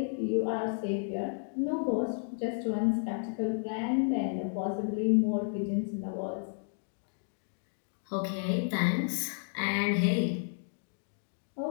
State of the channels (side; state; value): right; silent; digital silence